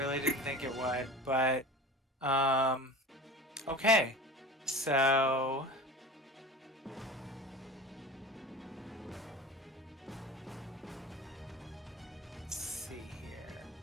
didn't think it would, but okay. So let's see here.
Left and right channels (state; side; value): normal; both; correlation 0.34